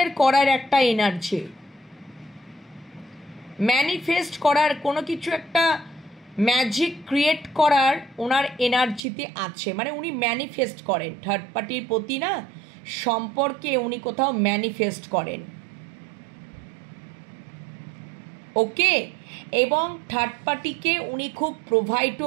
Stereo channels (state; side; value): drops out; left; at 9.0 s